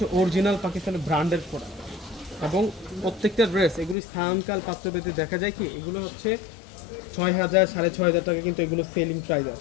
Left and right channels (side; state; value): right; drops out; at 4.0 s